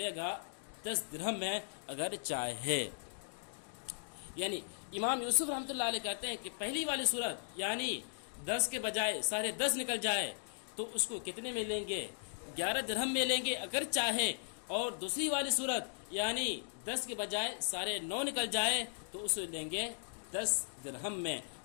گا 10 درہم میں اگر چاہے۔ یعنی امام یوسف رحمۃ اللہ علیہ کہتے ہیں کہ پہلی والی صورت یعنی 10 کے بجائے 10.5 نکل جائے تو اس کو کتنے میں لیں گے؟ 11 درہم میں لیں گے اگر چاہے، اور دوسری والی صورت یعنی 10 کے بجائے 9.5 نکل جائے تو اسے لیں گے 10 درہم میں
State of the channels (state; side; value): silent; right; digital silence